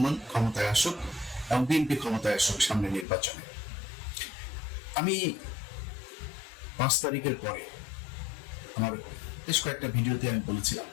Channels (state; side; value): drops out; right; at 3.1 s